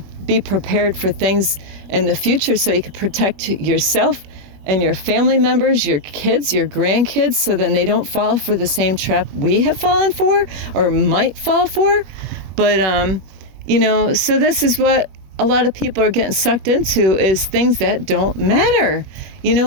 be prepared for things in the future, so you can protect yourself and your family members, your kids, your grandkids, so then they don't fall for the same trap we have fallen for or might fall for. But, you know, so this is what a lot of people are getting sucked into, is things that don't matter. You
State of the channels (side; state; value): left; late; 21 ms